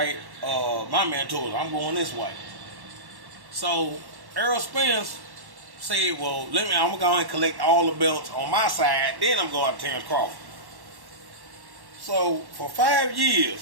my mentors. I'm going this way. So Earl Spence said, well, I'm gonna go and collect all the belts on my side. Then I'm going to Terrence Crawford. So for 5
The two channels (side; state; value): left; late; 1.1 ms